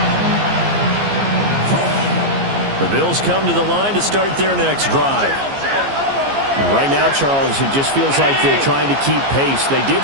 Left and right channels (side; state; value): left; late; 15 ms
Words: The Bills come to the line to start their next drive. Right now, Charles, it just feels like they're trying to keep pace. They did